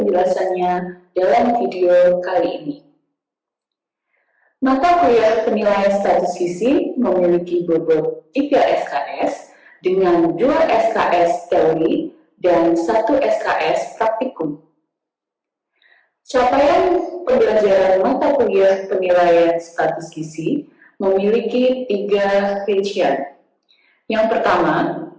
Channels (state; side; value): identical; both; correlation 1.00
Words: dalam video kali ini. Mata kuliah penilaian status gizi memiliki bobot 3 SKS dengan 2 SKS teori dan 1 SKS praktikum. Capaian pembelajaran mata kuliah penilaian status gizi memiliki 3 rincian. Yang pertama,